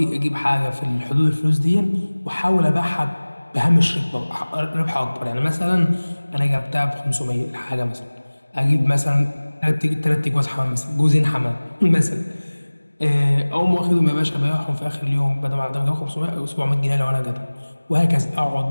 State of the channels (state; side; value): inverted; both; correlation -1.00